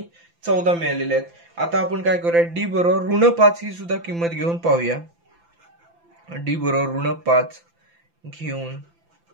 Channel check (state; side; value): late; left; 5.9 ms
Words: 14 मिळालेल्या आहेत. आता आपण काय करूया डी बरोबर ऋण 5 ही सुद्धा किंमत घेऊन पाहूया. डी बरोबर ऋण 5 घेऊन